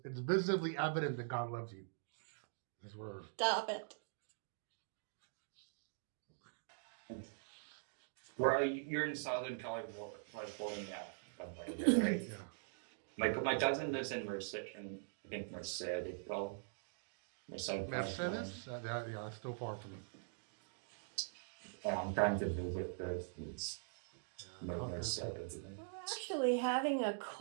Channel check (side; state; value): left; silent; digital silence